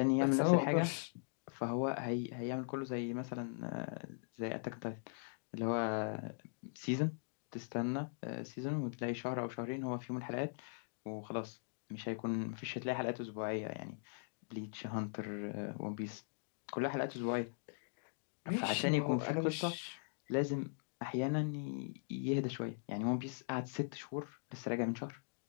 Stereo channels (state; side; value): silent; right; digital silence